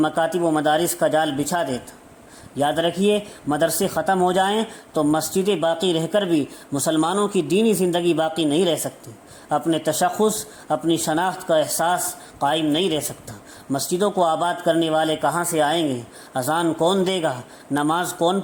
مکاتب و مدارس کا جال بچھا دیتا۔ یاد رکھیے، مدرسے ختم ہو جائیں تو مسجدیں باقی رہ کر بھی مسلمانوں کی دینی زندگی باقی نہیں رہ سکتی، اپنے تشخص، اپنی شناخت کا احساس قائم نہیں رہ سکتا۔ مسجدوں کو آباد کرنے والے کہاں سے آئیں گے؟ اذان کون دے گا؟ نماز کون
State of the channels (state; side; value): identical; both; correlation 1.00